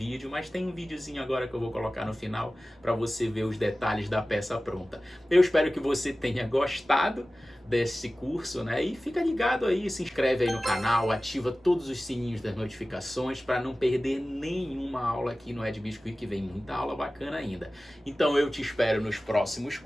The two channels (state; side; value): normal; both; correlation 0.96